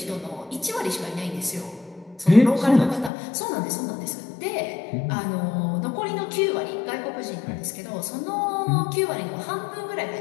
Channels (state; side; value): drops out; right; at 3.1 s